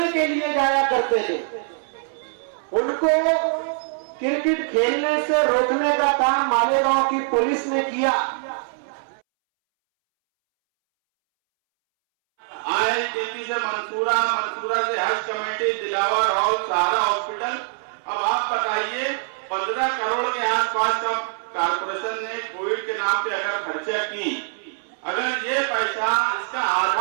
के लिए जाया करते थे, उनको क्रिकेट खेलने से रोकने का काम मालेगांव की पुलिस ने किया। IITP से मंसूरा, मंसूरा से हज कमेटी, दिलावर हॉल, सहारा हॉस्पिटल। अब आप बताइए 15 करोड़ के आसपास का कारपोरेशन ने कोविड के नाम पे अगर खर्चा की, अगर ये पैसा, इसका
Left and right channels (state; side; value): silent; left; 63 dB below the other